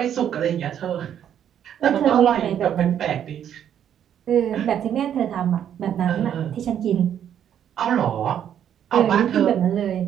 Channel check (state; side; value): quieter; left; 9.6 dB